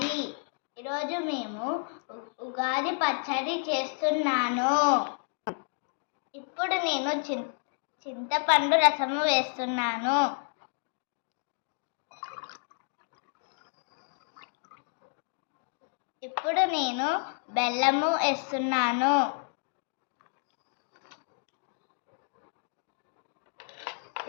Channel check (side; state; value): right; silent; 57 dB below the other